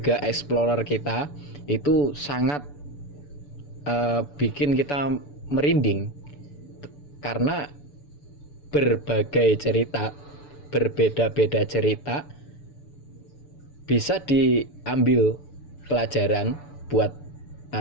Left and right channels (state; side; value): late; right; 6.9 ms